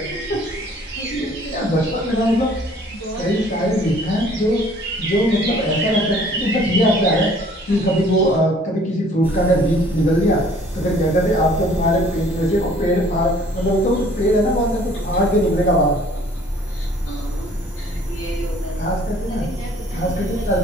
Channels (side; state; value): both; normal; correlation 0.55